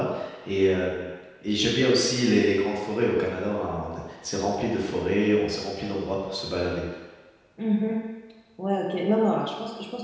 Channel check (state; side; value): identical; both; correlation 1.00